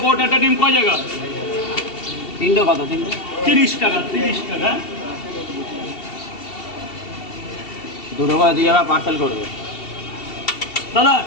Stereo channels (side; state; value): right; late; 2.7 ms